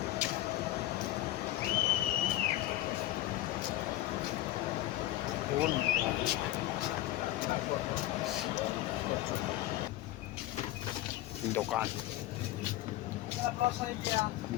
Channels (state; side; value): quieter; right; 15.4 dB